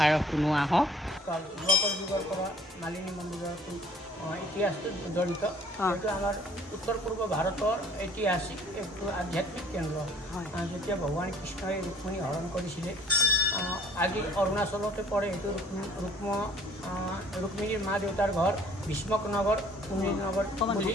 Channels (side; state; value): both; normal; correlation 0.56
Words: শুনো আহক। যোৱাকৰ যুগৰ পৰা মালিনী মন্দিৰৰ ইতিহাসটো জড়িত। এইটো আমাৰ উত্তৰ পূৰ্ব ভাৰতৰ ঐতিহাসিক একটো আধ্যাত্মিক কেন্দ্ৰ। যেতিয়া ভগৱান কৃষ্ণই ৰুক্মিণী হৰণ কৰিছিলে, আজি অৰুণাচলতে পৰে। এইটো ৰুক্মিণীৰ মা দেউতাৰ ঘৰ ভীষ্মক নগৰ, কুমিৰ নগৰ বুলি